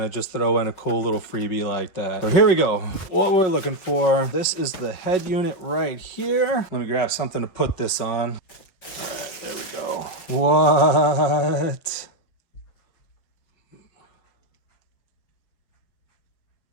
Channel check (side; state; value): right; late; 5.5 ms